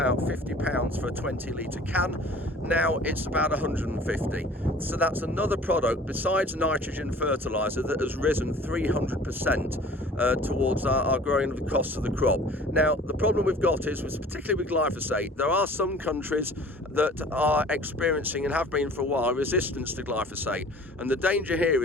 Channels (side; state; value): both; normal; correlation 0.47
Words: £50 for a 20-litre can. Now it's about 150. So that's another product besides nitrogen fertilizer that has risen 300% towards our growing of the cost of the crop. Now, the problem we've got is, particularly with glyphosate, there are some countries that are experiencing, and have been for a while, resistance to glyphosate. And the danger here